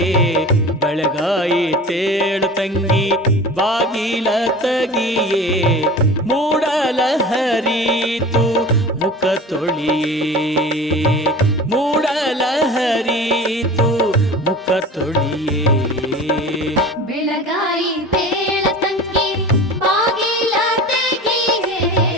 ಬೆಳಗಾಯಿತೇಳ ತಂಗಿ ಬಾಗಿಲ ತಗಿಯೇ, ಮೂಡಲ ಹರಿತು ಮುಖ ತೊಳಿಯೇ, ಮೂಡಲ ಹರಿತು ಮುಖ ತೊಳಿಯೇ. ಬೆಳಗಾಯಿತೇಳ ತಂಗಿ ಬಾಗಿಲ ತೆಗಿಯೇ,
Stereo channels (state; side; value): normal; both; correlation 0.37